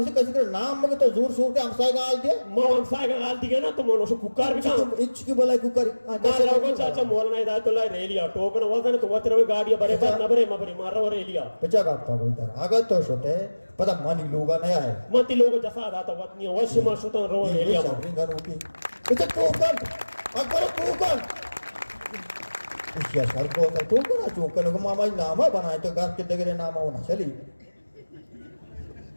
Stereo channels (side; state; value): both; inverted; correlation -1.00